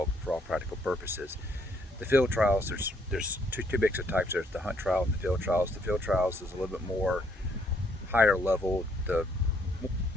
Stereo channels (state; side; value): normal; both; correlation 0.69